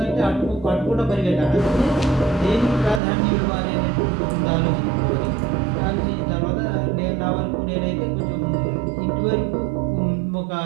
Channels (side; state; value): left; drops out; at 3.0 s